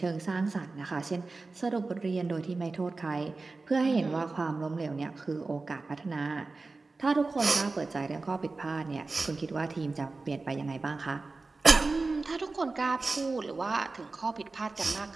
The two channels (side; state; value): left; quieter; 3.7 dB